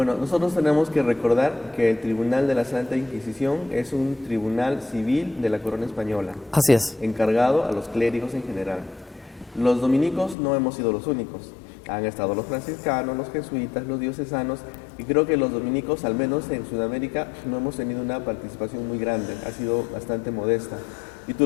nosotros tenemos que recordar que el Tribunal de la Santa Inquisición es un tribunal civil de la corona española. Así es. Encargado a los clérigos en general. Los dominicos no hemos sido los únicos. Han estado los franciscanos, los jesuitas, los diocesanos, y creo que los dominicos, al menos en Sudamérica, no hemos tenido una participación muy grande, ha sido bastante modesta. Y tú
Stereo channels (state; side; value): drops out; right; at 10.4 s